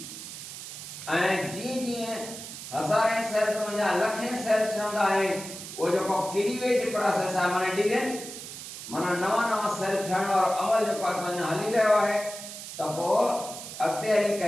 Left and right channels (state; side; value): noise; right; hiss, 11 dB below the sound